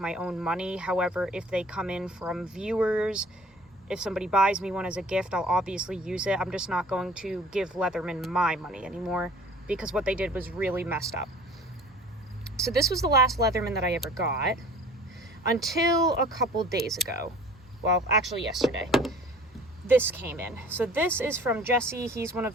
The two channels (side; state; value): both; normal; correlation 0.48